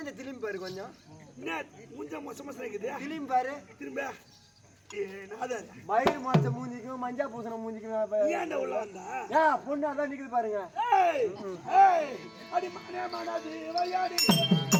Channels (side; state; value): both; identical; correlation 1.00